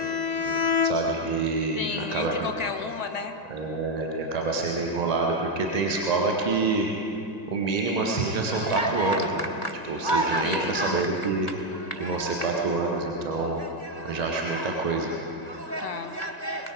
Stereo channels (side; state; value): right; late; 1.9 ms